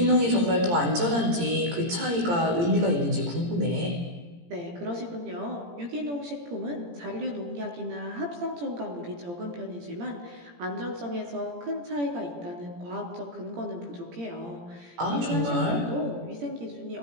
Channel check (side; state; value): left; late; 17 ms